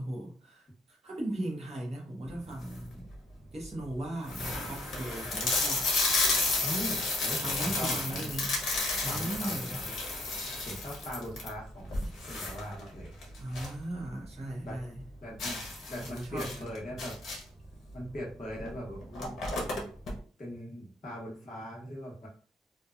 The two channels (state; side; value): normal; both; correlation 0.65